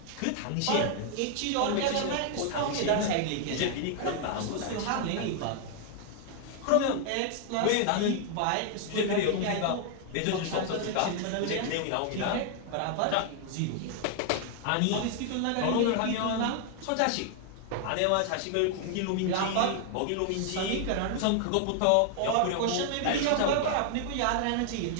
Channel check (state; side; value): different; both; correlation 0.00